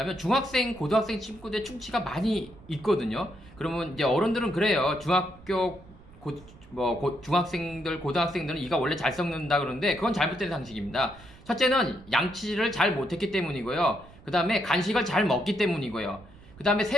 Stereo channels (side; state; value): right; noise; rumble, 22 dB below the sound